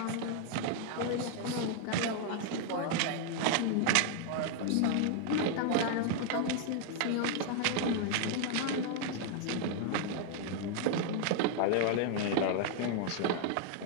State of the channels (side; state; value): both; different; correlation 0.00